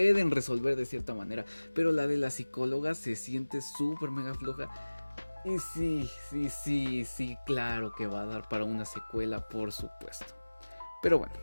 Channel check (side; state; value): both; inverted; correlation -1.00